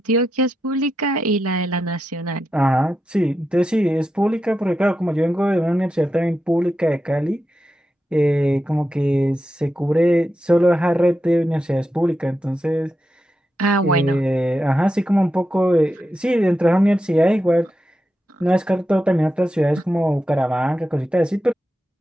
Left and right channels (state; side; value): normal; both; correlation 0.88